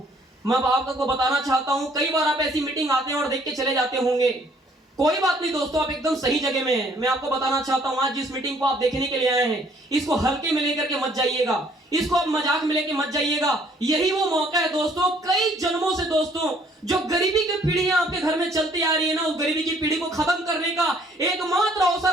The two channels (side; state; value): both; normal; correlation 0.61